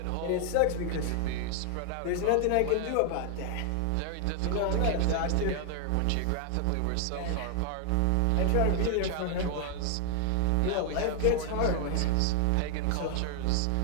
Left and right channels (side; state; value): both; different; correlation 0.00